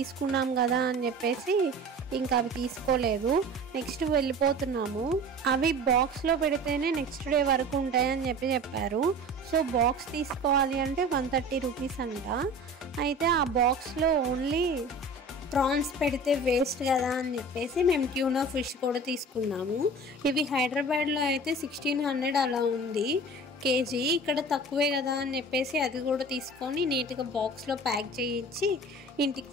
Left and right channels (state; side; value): normal; both; correlation 0.39